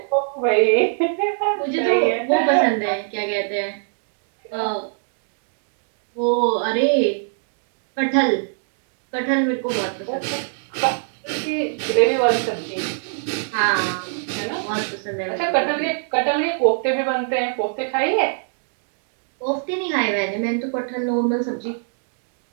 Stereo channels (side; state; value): left; silent; digital silence